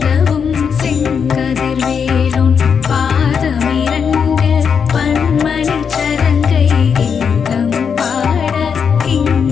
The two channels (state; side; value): quieter; right; 6.7 dB